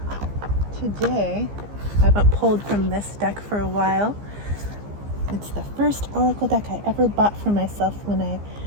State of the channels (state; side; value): late; left; 15 ms